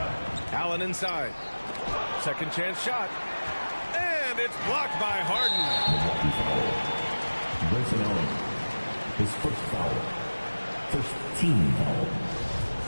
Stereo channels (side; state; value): both; inverted; correlation -1.00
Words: Allen inside. Second chance shot. And it's blocked by Harden. Grayson Allen, his first foul. First team foul.